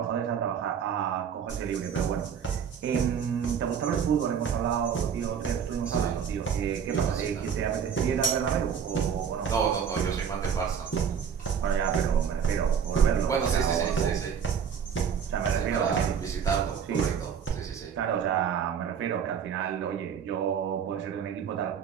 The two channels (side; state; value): left; quieter; 7.4 dB